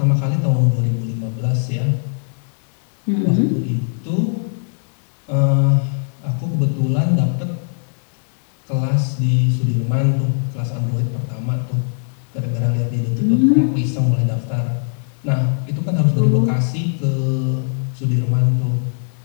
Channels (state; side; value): silent; right; digital silence